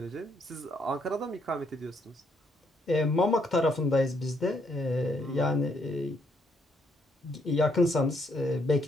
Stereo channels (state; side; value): normal; both; correlation 0.72